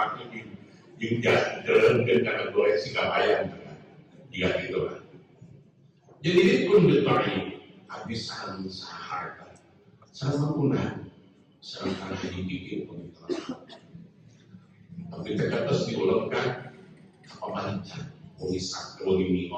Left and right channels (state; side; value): identical; both; correlation 1.00